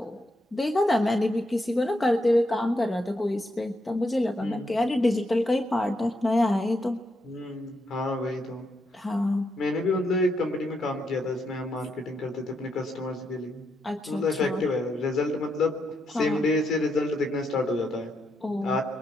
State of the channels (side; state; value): both; normal; correlation 0.81